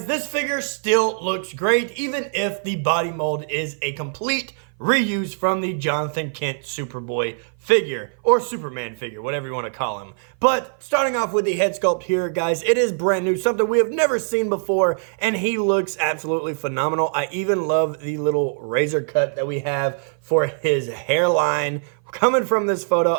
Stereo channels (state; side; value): silent; left; 57 dB below the other